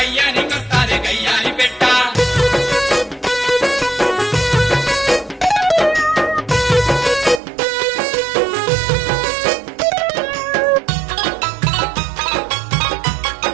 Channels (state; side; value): drops out; left; at 7.4 s